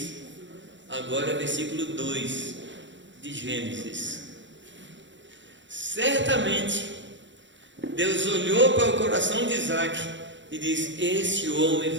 agora versículo 2 de Gênesis. Certamente Deus olhou para o coração de Isaac e disse: este homem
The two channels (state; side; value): late; left; 0.54 ms